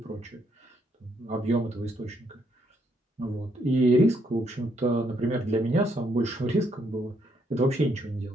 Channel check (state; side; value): normal; both; correlation 0.73